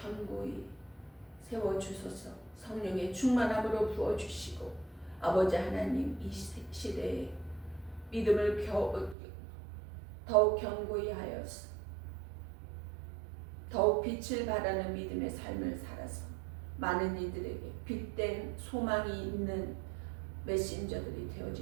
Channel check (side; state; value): left; drops out; at 9.2 s